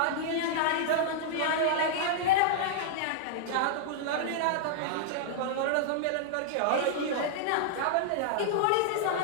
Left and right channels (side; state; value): both; different; correlation -0.01